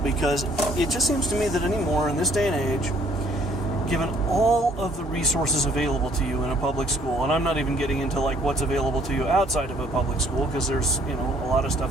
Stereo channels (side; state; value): both; normal; correlation 0.62